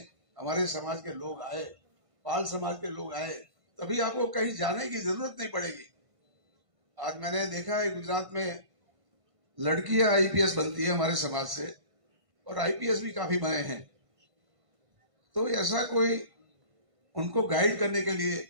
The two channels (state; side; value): late; left; 1.5 ms